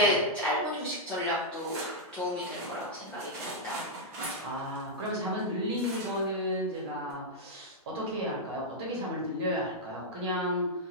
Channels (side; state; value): both; normal; correlation -0.04